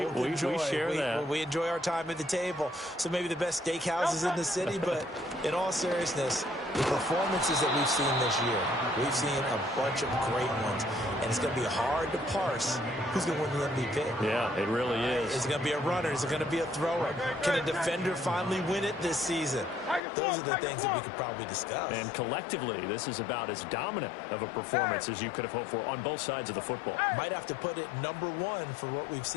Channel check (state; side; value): drops out; right; at 20.1 s